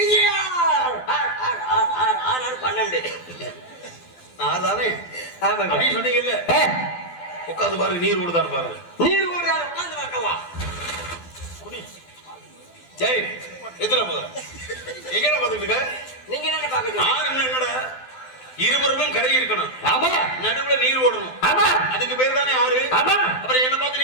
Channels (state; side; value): late; right; 12 ms